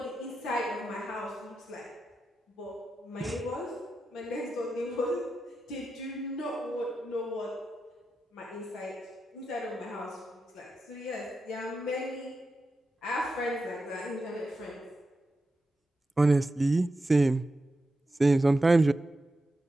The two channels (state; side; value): normal; both; correlation 0.90